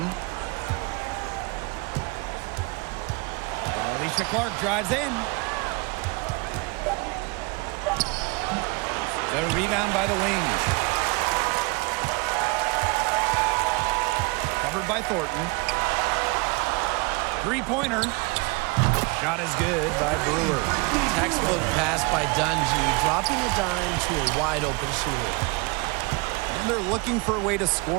Alicia Clark drives in. The rebound by the Wings. Covered by Thornton. Three-pointer. Shot is good by Brewer. Textbook pass by Dungy, dropping a dime to a wide-open shooter. And they're looking for a way to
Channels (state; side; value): quieter; left; 28.3 dB